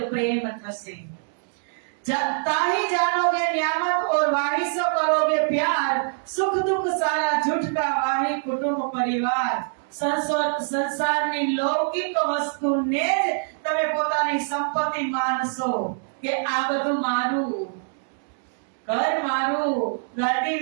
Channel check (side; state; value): left; silent; digital silence